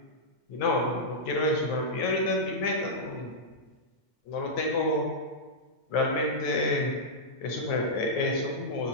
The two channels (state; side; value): late; right; 9.3 ms